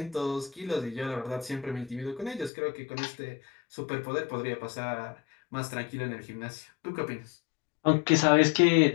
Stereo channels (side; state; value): right; drops out; at 2.5 s